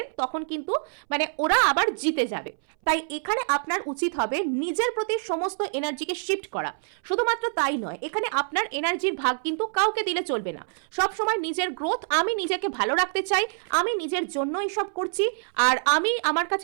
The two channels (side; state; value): left; silent; 61 dB below the other